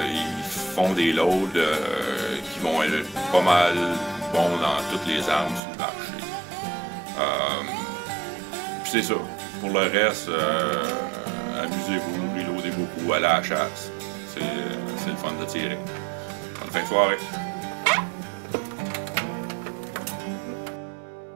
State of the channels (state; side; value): drops out; left; at 5.6 s